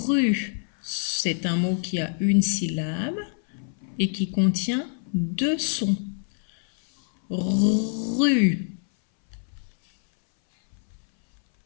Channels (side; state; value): right; silent; 61 dB below the other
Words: c'est un mot qui a une syllabe et qui contient deux sons. Rue.